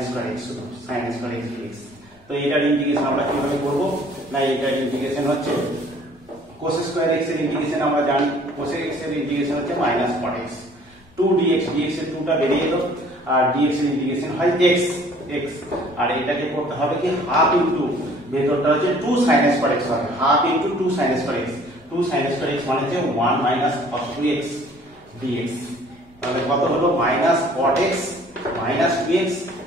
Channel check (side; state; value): both; normal; correlation 0.55